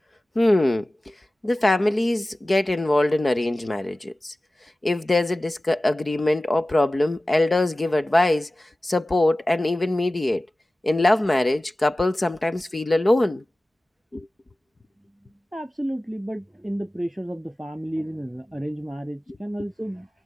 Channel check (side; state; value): both; normal; correlation 0.97